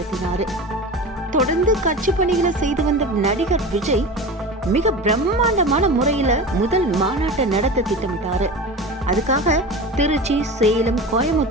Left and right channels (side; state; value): both; normal; correlation 0.31